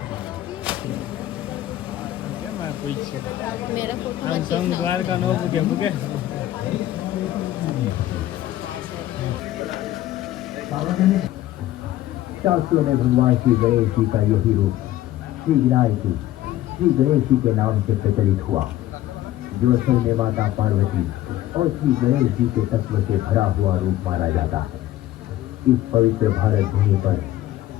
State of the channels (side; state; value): right; quieter; 14.1 dB